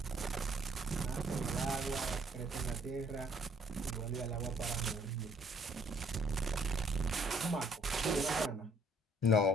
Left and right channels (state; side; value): normal; both; correlation 0.63